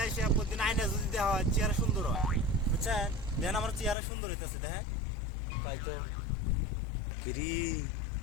আসে প্রতিদিন আয়না যদি দেওয়া হয় চেহারা সুন্দর হয়, বুঝছেন? দেখেন আমার চেহারা সুন্দর হইতেছে, দেখেন। তাই তো কিরি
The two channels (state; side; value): drops out; right; at 4.0 s